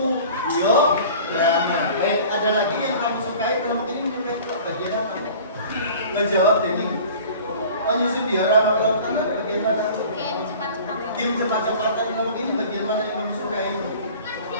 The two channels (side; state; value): both; inverted; correlation -0.44